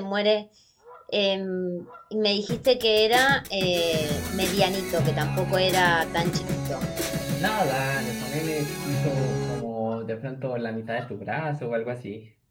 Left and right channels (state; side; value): identical; both; correlation 1.00